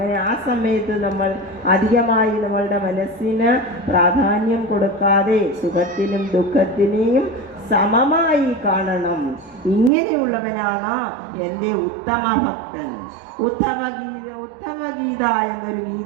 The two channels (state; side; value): drops out; left; at 9.9 s